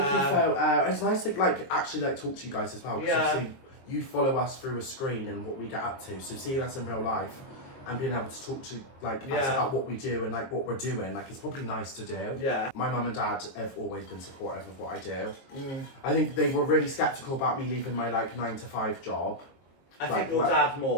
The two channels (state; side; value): late; right; 22 ms